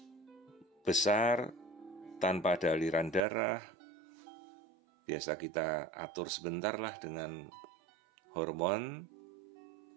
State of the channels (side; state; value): left; drops out; at 3.2 s